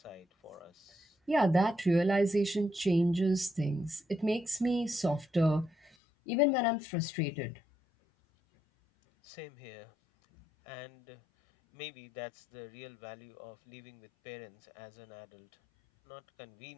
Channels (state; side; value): drops out; right; at 6.0 s